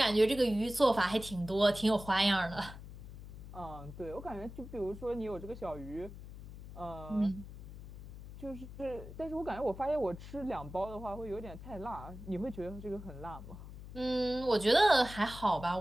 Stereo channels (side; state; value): left; noise; hum, 13 dB below the sound